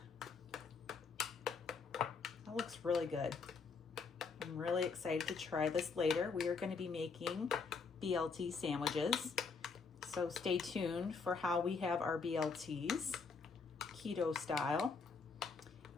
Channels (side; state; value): right; quieter; 4.9 dB